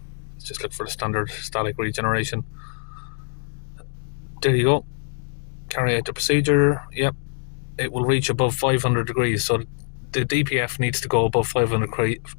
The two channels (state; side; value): silent; right; 63 dB below the other